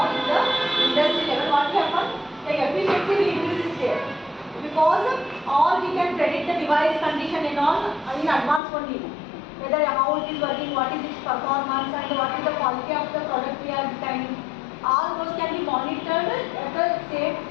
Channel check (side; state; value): right; drops out; at 8.6 s